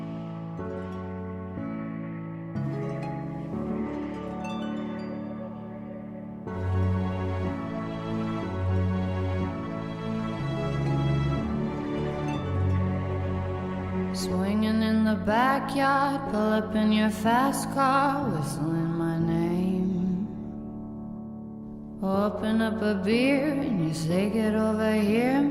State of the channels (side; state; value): both; identical; correlation 1.00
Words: in the backyard, pull up in your fast car, whistling my name. Open up a beer and you say get over here